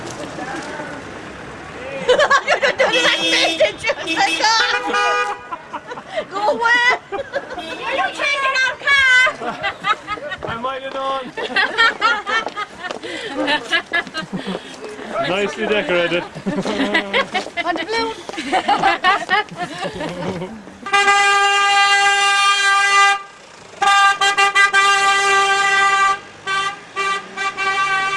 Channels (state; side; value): identical; both; correlation 1.00